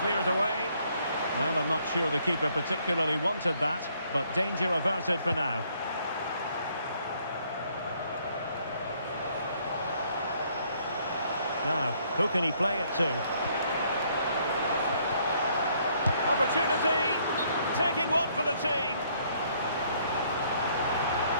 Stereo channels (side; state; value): both; inverted; correlation -0.66